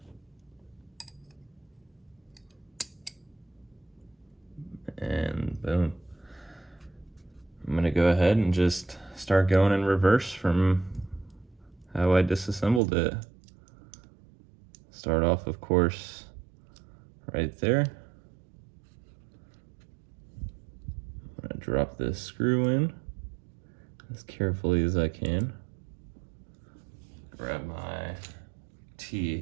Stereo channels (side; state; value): left; drops out; at 12.8 s